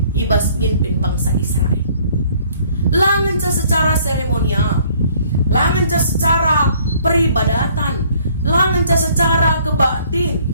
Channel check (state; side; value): inverted; both; correlation -0.59